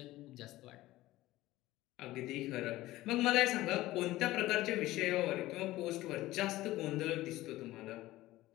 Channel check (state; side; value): quieter; right; 17.0 dB